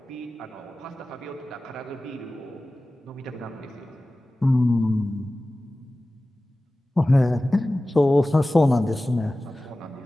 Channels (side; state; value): both; normal; correlation 0.96